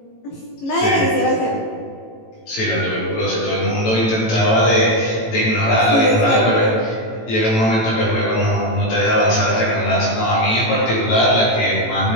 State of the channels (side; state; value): right; late; 18 ms